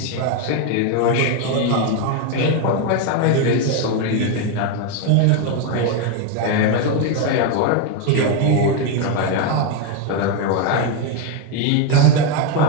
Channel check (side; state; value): both; different; correlation 0.01